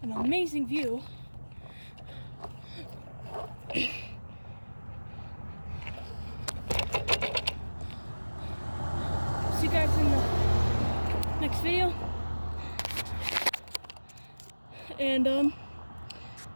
an amazing view. See you guys in the next video. And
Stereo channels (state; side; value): inverted; both; correlation -1.00